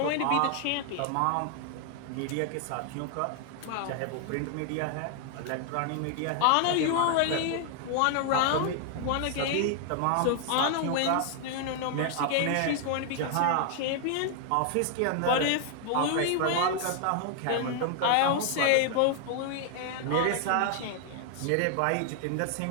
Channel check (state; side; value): different; both; correlation 0.00